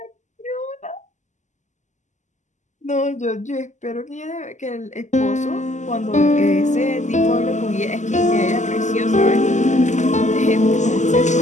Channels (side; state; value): right; late; 0.34 ms